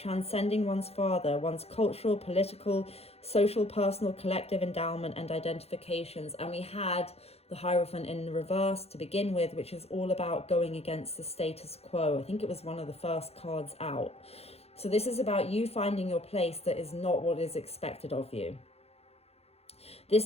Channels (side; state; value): right; late; 0.29 ms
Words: one's father, one's cultural, political, social, personal, collective endowment and identifications. And we had the Hierophant in reverse to begin with, which is all about going against the status quo. I think it was one of the first cards out. So this is about you finding your place that is not what is expected of you.